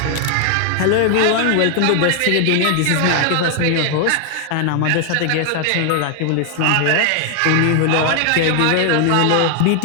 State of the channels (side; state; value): both; different; correlation 0.00